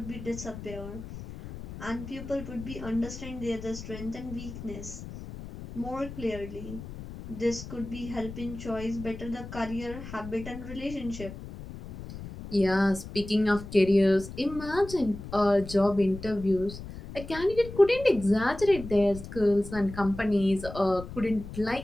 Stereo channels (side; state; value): left; noise; rumble, 12 dB below the sound